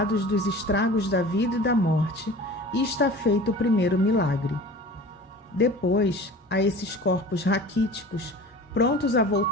dos estragos da vida e da morte, e está feito o primeiro milagre. Depois, a esses corpos raquíticos, prontos a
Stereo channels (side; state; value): both; normal; correlation 0.40